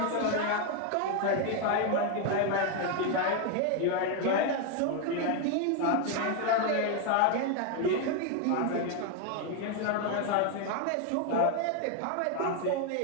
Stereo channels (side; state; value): both; different; correlation 0.01